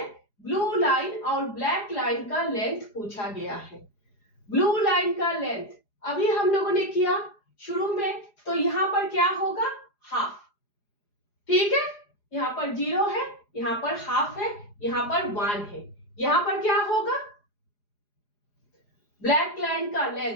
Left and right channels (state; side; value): late; right; 4.9 ms